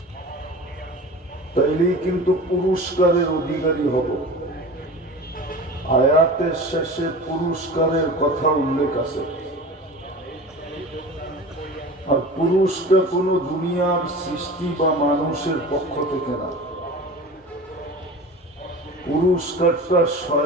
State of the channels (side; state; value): both; normal; correlation 0.36